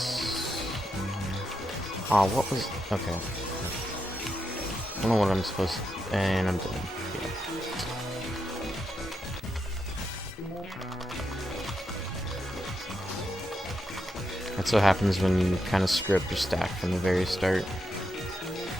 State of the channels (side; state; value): both; normal; correlation 0.84